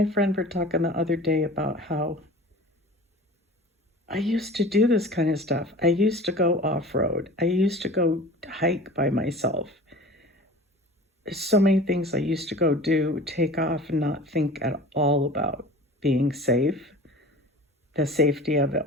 friend were talking the other day about how I used to do this kind of stuff. I used to go off-road. I used to go hike by myself. There's so many things I used to go do, take off and not think at all about being safe, the safety of it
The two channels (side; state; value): both; normal; correlation 0.40